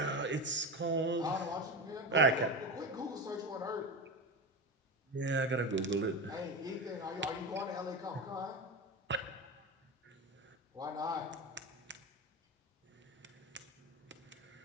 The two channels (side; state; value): both; normal; correlation 0.22